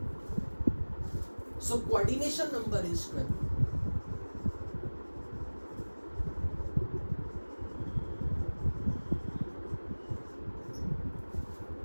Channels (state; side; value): inverted; both; correlation -1.00